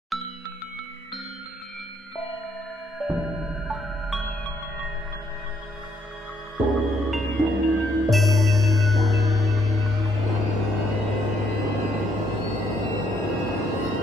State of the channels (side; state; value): both; normal; correlation 0.71